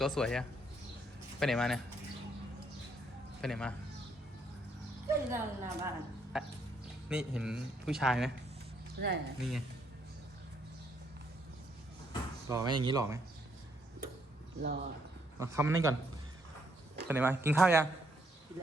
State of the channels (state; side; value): normal; both; correlation 0.72